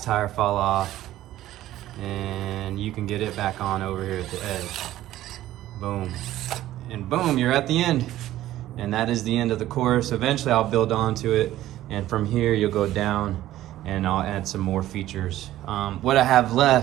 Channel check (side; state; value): left; quieter; 14.2 dB